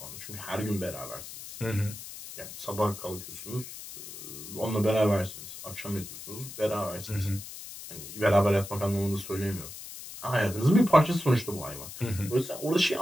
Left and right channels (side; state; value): left; noise; hiss, 12 dB below the sound